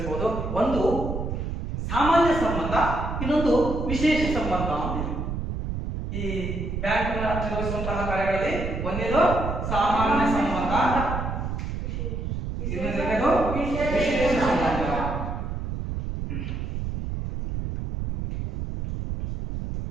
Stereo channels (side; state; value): right; noise; rumble, 4 dB below the sound